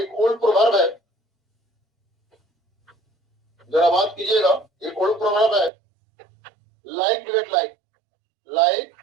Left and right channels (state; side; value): drops out; left; at 5.7 s